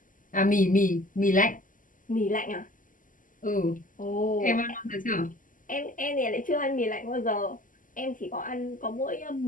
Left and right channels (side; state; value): right; late; 0.38 ms